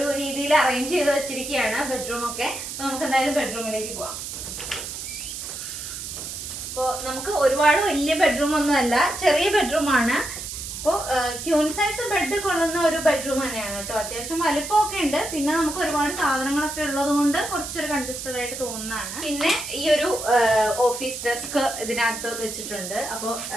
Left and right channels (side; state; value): right; noise; hiss, 8 dB below the sound